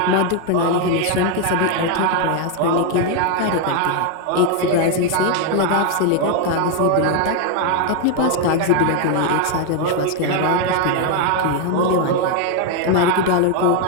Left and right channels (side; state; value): both; different; correlation 0.01